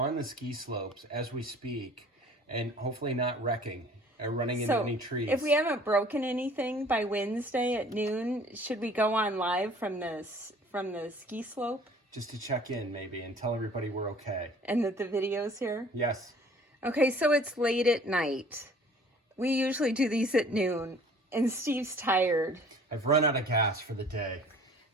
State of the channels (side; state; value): both; normal; correlation 0.51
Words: the ski slopes as we speak, and hopefully not wrecking or running into any trees. If we haven't broken anything by Wednesday at noon, should we go on live from the ski slope? Just to check in, maybe, and tell everybody we're okay. And that the video's here? Yes. Okay, so it's late at night. We usually do these at noon, and Steve's tired. I've run out of gas for the day.